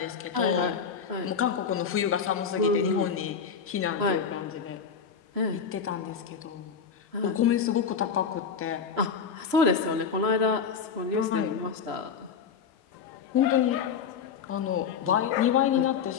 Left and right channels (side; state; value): right; quieter; 6.5 dB